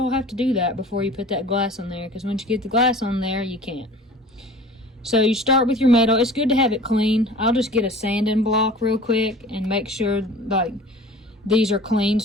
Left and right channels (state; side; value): normal; both; correlation 0.43